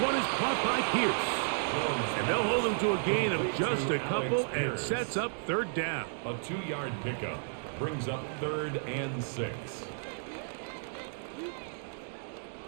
is caught by Pierce. And they'll hold him to a gain of just a couple and sets up 3rd down. A 2-yard pickup brings up 3rd and 6.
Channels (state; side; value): silent; left; digital silence